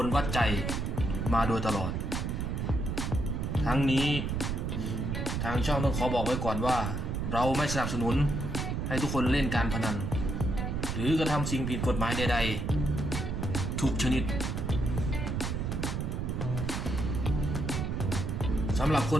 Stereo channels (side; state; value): right; noise; rumble, 1 dB below the sound